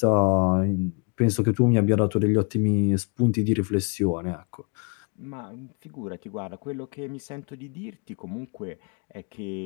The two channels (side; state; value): right; quieter; 35.7 dB